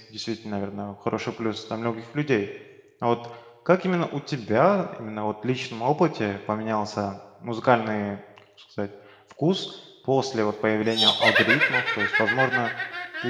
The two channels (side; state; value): both; identical; correlation 1.00